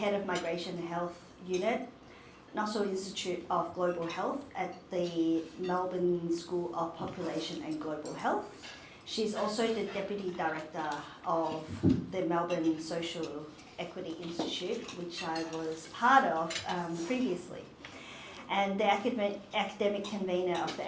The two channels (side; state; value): both; identical; correlation 1.00